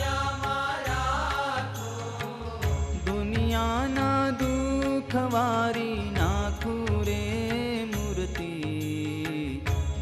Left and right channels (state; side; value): identical; both; correlation 1.00